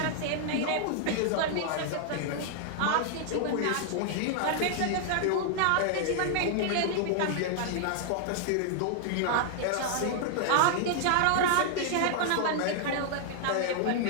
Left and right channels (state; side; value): different; both; correlation -0.01